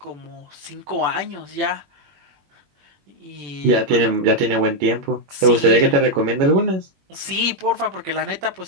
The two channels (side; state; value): left; late; 21 ms